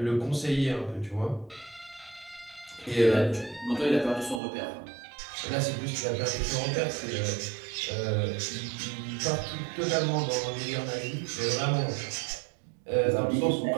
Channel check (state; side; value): drops out; left; at 4.4 s